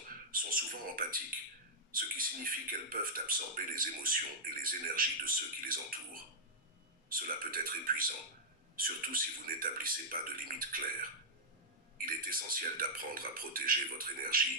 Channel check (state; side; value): normal; both; correlation -0.07